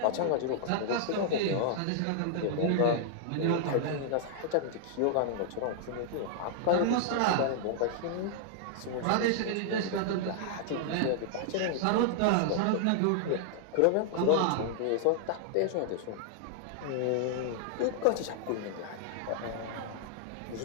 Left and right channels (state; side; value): different; both; correlation -0.01